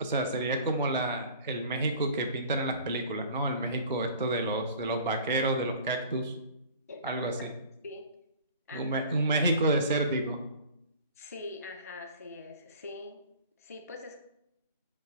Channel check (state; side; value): inverted; both; correlation -0.45